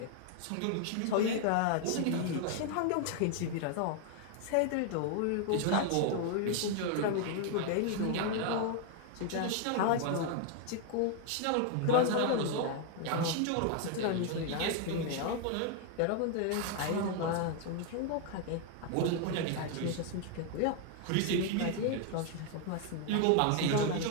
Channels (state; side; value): different; both; correlation 0.00